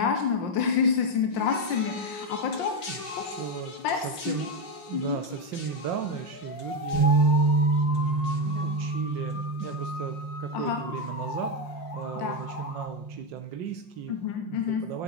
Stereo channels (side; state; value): right; late; 5.6 ms